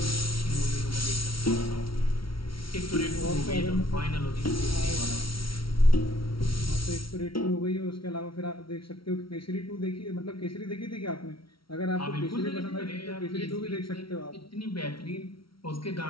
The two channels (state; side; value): late; right; 0.74 ms